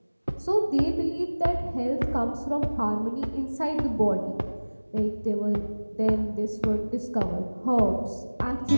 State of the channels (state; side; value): inverted; both; correlation -1.00